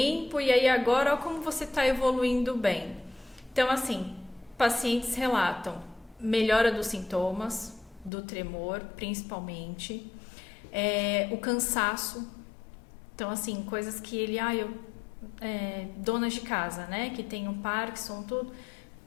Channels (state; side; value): drops out; right; at 8.1 s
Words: e aí agora ó como você tá evoluindo bem. Então, assim, pacientes relatam melhora dos sintomas, do tremor, principalmente, o cansaço. Então, assim, coisas que ele, donas de casa, né? Que tem o Parkinson, tudo,